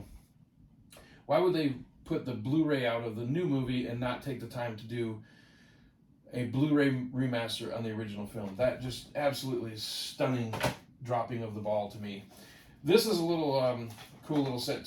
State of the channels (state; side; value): identical; both; correlation 1.00